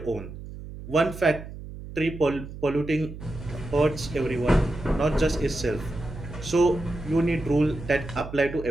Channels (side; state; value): right; noise; hum, 12 dB below the sound